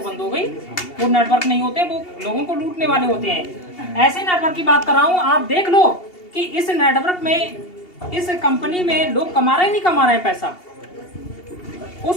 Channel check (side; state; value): right; late; 2.8 ms